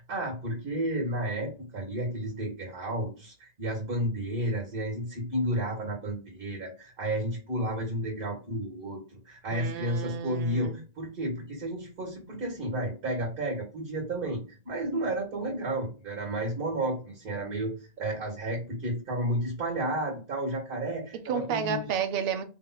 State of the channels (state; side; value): late; left; 1.9 ms